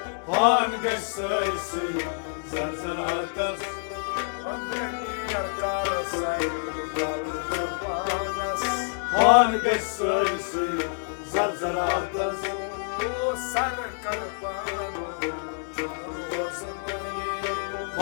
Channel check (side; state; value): right; silent; digital silence